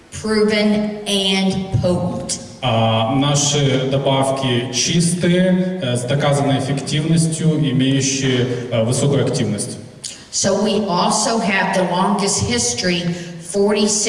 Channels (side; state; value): both; identical; correlation 1.00